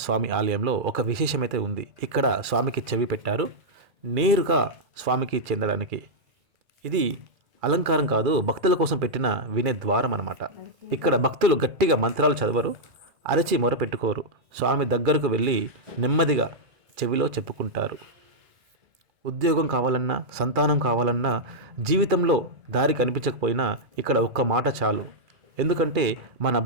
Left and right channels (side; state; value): left; late; 2.4 ms